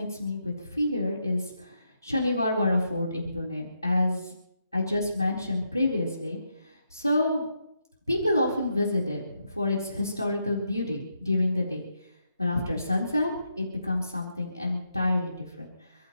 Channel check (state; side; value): inverted; both; correlation -0.81